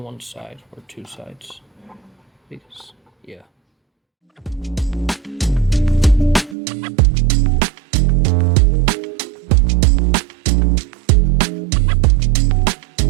one side, or two sides. Because, yeah.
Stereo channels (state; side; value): drops out; left; at 6.6 s